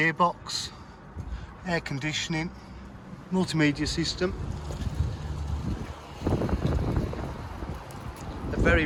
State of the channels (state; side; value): identical; both; correlation 1.00